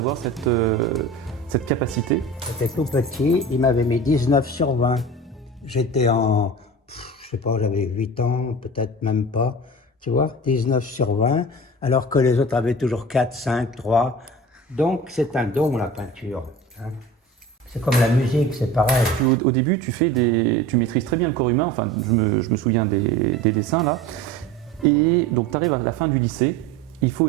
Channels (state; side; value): normal; both; correlation 0.36